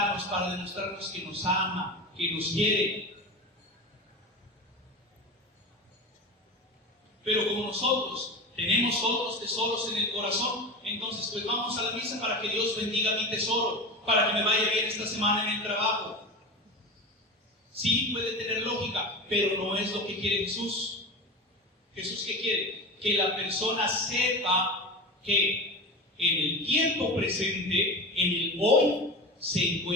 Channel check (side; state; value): both; normal; correlation 0.27